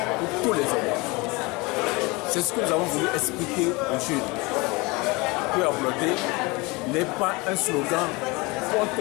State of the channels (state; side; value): quieter; right; 25.2 dB